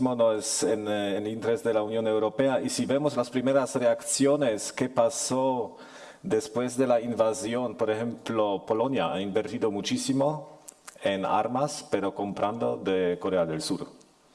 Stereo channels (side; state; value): both; identical; correlation 1.00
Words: no es en el interés de la Unión Europea. Y si vemos las primeras reacciones, ¿qué pasó después de la invasión? Por ejemplo, Polonia ha invertido muchísimo en armas, pero comprando de Corea del Sur.